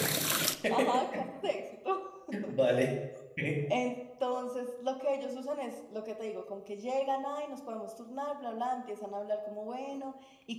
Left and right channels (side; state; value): both; identical; correlation 1.00